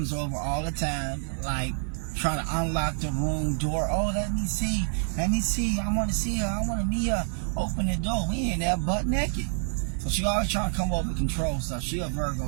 over all the time, like trying to unlock the room door. Oh, let me see, I want to see her, I want to meet her. Open the door, we in there butt naked. So she always trying to come over and control stuff. She a Virgo,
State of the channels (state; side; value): silent; left; 55 dB below the other